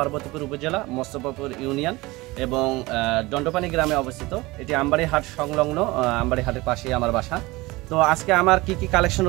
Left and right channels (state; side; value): quieter; left; 21.4 dB